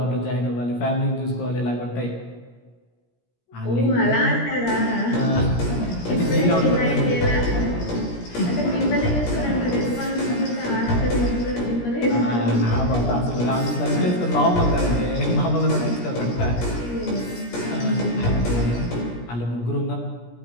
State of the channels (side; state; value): right; late; 17 ms